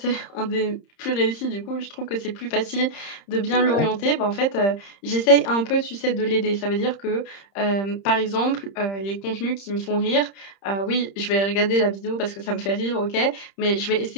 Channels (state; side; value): late; right; 30 ms